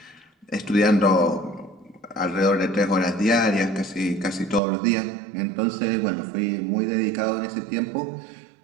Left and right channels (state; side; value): drops out; left; at 4.6 s